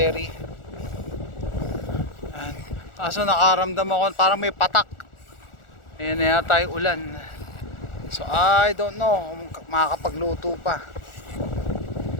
Kaso nakaramdam ako parang may patak. Ayan na yata yung ulan. So I don't know kung makakapagluto pa.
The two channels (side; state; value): right; late; 1.4 ms